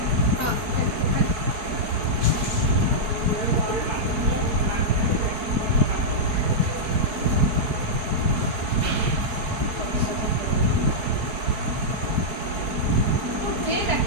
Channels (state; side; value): late; left; 4.7 ms